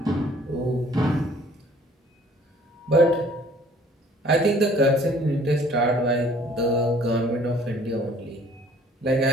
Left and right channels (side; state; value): both; normal; correlation 0.56